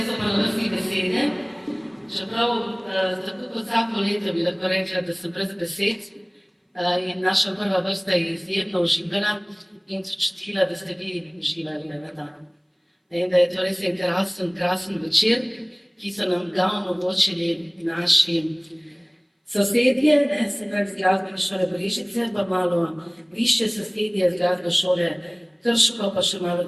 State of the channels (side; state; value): both; identical; correlation 1.00